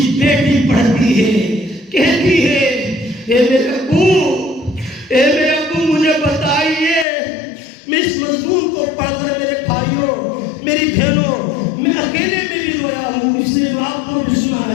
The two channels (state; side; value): drops out; right; at 7.1 s